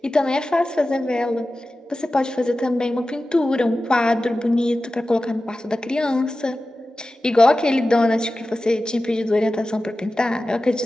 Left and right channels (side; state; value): both; normal; correlation 0.94